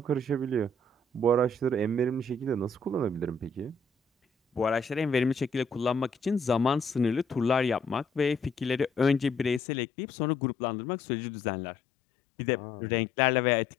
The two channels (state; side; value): drops out; right; at 9.6 s